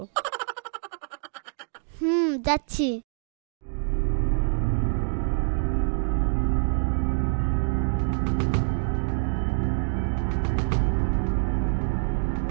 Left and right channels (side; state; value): left; silent; digital silence